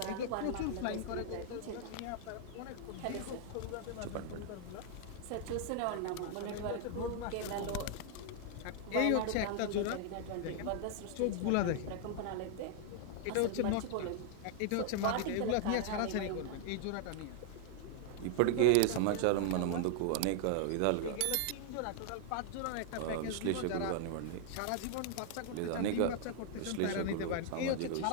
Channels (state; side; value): different; both; correlation 0.00